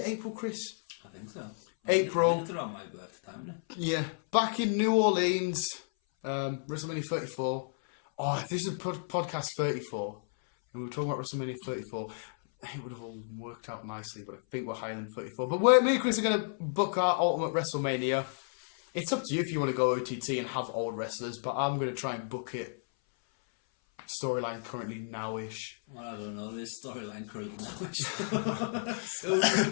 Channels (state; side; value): silent; right; 56 dB below the other